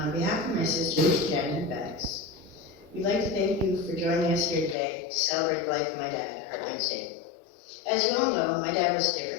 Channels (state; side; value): drops out; right; at 4.8 s